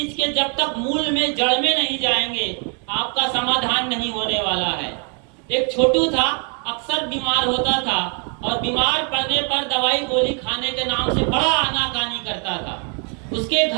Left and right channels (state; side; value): quieter; left; 38.8 dB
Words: के जब तक मूल में, जड़ में नहीं जाएंगे, आपका समाधान नहीं होने वाला है। एक छोटू था, अक्सर बीमार होता था और बीमार पड़ने पर दवाई गोली खाने के नाम से बड़ा आनाकानी करता था। उसके